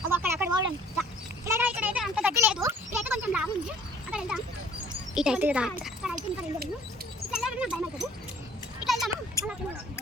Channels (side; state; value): both; normal; correlation 0.55